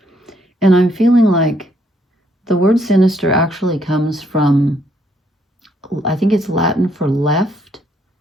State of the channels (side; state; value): both; normal; correlation 0.70